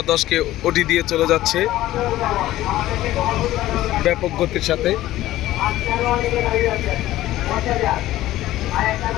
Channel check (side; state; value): right; quieter; 15.2 dB